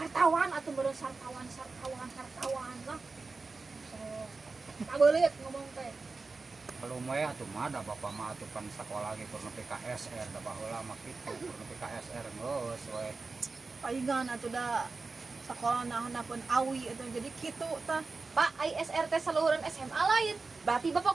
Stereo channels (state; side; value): quieter; left; 4.0 dB